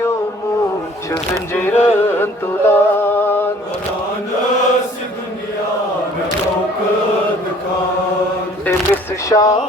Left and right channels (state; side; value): normal; both; correlation 0.54